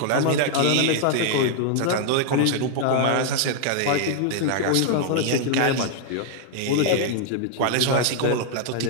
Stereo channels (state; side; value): different; both; correlation -0.01